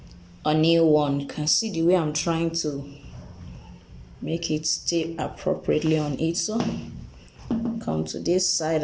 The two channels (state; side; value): identical; both; correlation 1.00